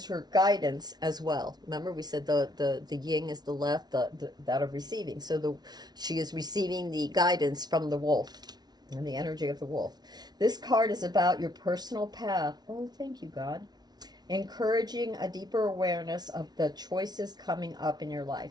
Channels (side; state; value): left; late; 0.19 ms